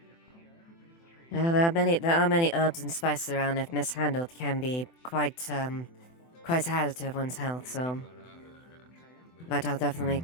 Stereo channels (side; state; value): right; late; 24 ms